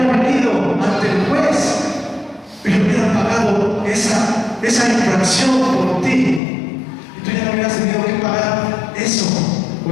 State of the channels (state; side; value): drops out; right; at 6.4 s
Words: venido ante el juez y le hubiera pagado esa infracción por ti. Y tú ya no hubieras tenido que pagar eso, o